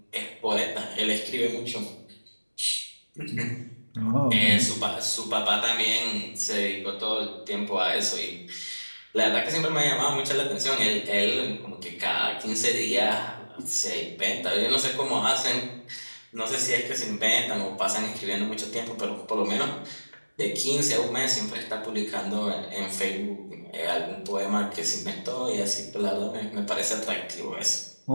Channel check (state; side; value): inverted; both; correlation -1.00